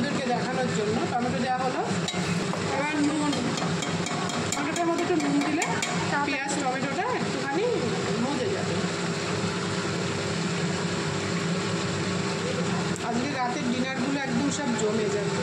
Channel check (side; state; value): both; identical; correlation 1.00